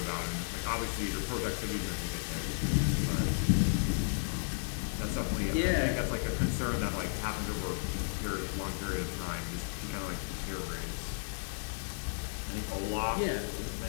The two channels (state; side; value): silent; right; digital silence